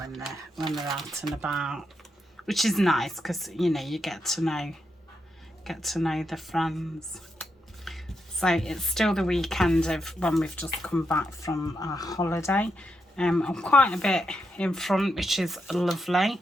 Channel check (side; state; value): both; normal; correlation 0.83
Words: they're out and about, which is nice because, you know, you get to know the friends. So it's still the weekend of when we've just come back from our holiday. I'm quite a bit in front, which is lovely.